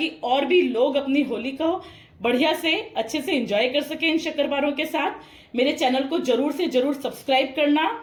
और भी लोग अपनी होली को बढ़िया से अच्छे से एंजॉय कर सके इन शक्करपारों के साथ। मेरे चैनल को जरूर से जरूर सब्सक्राइब करना।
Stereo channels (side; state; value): both; identical; correlation 1.00